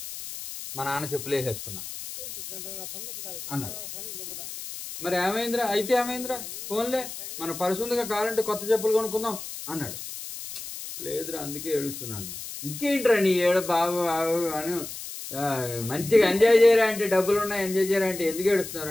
మా నాన్న చెప్పులు వేసేసుకున్నా అన్నాడు. మరి ఏమైందిరా? అయితే ఏమైందిరా? ఫోన్లే, మన పర్సు ఉందిగా, కావాలంటే కొత్త చెప్పులు కొనుక్కుందాం అన్నాడు. లేదురా, అందుకే ఏడుస్తున్నాను. ఇంకేంట్రా నీ ఏడ బాబు అని మంచిగా ఎంజాయ్ చేయరా అంటే, డబ్బులు ఉన్నాయి ఎంజాయ్ చేయరా అంటే ఎందుకు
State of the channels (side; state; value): left; noise; hiss, 10 dB below the sound